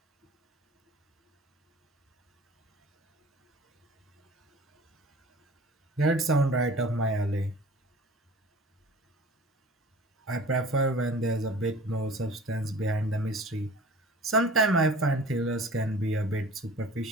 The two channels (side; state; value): both; normal; correlation 0.44